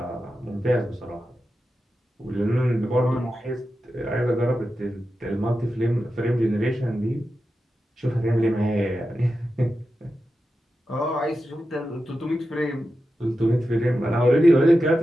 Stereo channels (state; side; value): normal; both; correlation 0.91